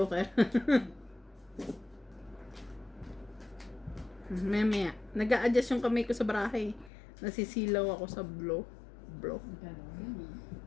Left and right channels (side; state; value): right; drops out; at 6.9 s